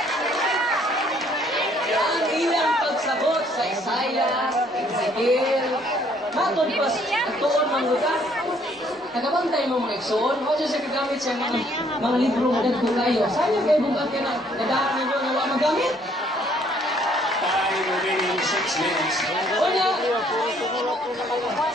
Ang ilang pagsagot sa Isaiah, Ezekiel, matod pa ang tuon ng lugar. Nagabantay mo mga iksoon, o siya kagamit siya mga libro na nagpo kayo. Sayang kayo bugat ka na, nadahan ninyo na wala magamit. Remaining 6 minutes. Una,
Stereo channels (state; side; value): normal; both; correlation 0.64